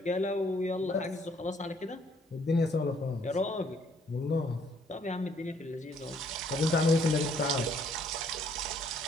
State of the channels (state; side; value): normal; both; correlation 0.65